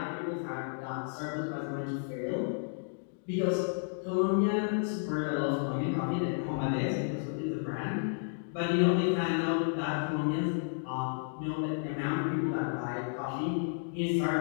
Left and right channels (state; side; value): silent; right; digital silence